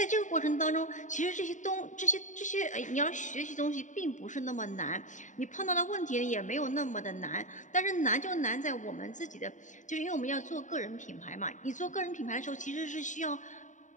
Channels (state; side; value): late; right; 0.36 ms